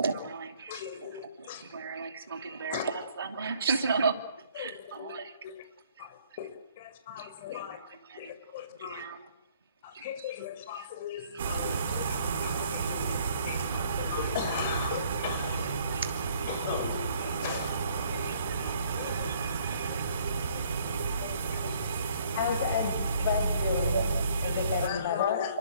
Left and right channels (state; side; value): inverted; both; correlation -0.61